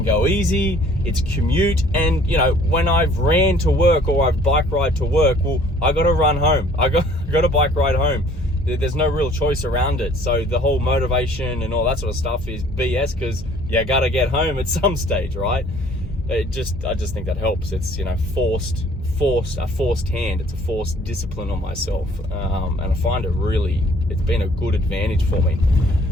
go easy, it's commute, and when I've ran to work or I've bike ride to work, well, I gotta run home. I got to bike ride home. There's no real choice around it. So the whole motivation and all that sort of stuff is BS, because you gotta get home at some stage, right? I just think that helps. It's a forced hand. It's a forced discipline on myself, and I find it's been a good advantage for me.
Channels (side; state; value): both; normal; correlation 0.56